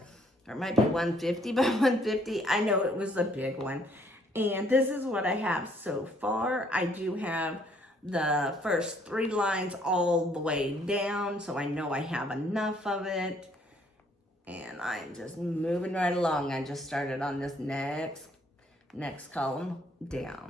Or it might be 150 by 150. I know it was a big one. And this is what I have so far. I do have the first 3 lines all the way down, so I know I have enough of it. And I'm just moving right along. I just started on this next column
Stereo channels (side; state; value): both; normal; correlation 0.65